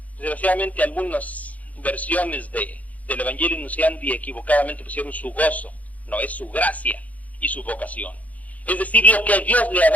Desgraciadamente algunas versiones del Evangelii Nunciandi equivocadamente pusieron su gozo. No, es su gracia y su vocación. Es decir, lo que Dios le ha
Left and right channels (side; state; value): right; late; 0.073 ms